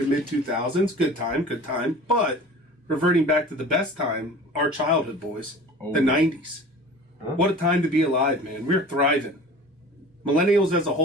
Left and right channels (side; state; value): both; normal; correlation 0.41